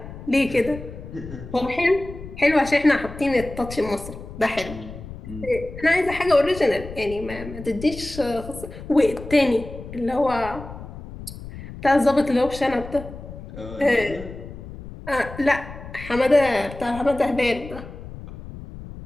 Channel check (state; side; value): noise; left; rumble, 13 dB below the sound